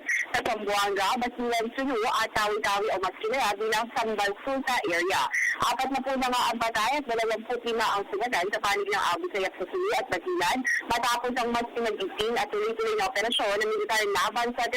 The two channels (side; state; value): both; identical; correlation 1.00